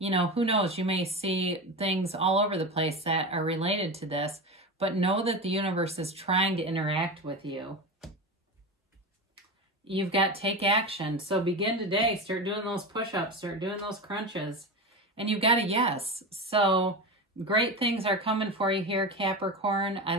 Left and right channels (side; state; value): both; normal; correlation 0.23